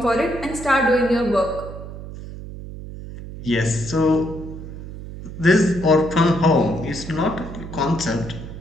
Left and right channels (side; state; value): right; noise; hum, 11 dB below the sound